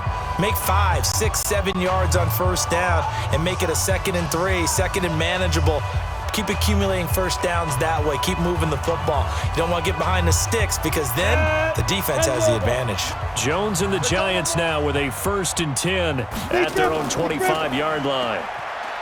Make 5, 6, 7 yards on first down and make it a 2nd and 3, 2nd and manageable. Keep accumulating first downs that way. Keep moving the football. You don't want to get behind the sticks because then the defense has the advantage. Jones and the Giants now with a 1st and 10 at their own 25-yard line.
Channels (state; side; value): identical; both; correlation 1.00